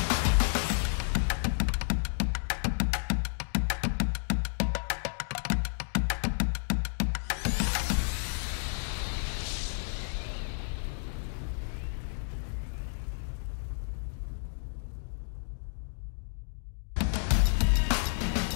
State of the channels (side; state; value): right; silent; digital silence